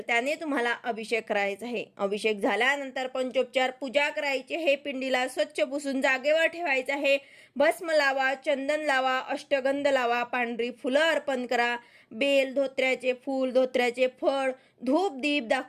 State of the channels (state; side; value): identical; both; correlation 1.00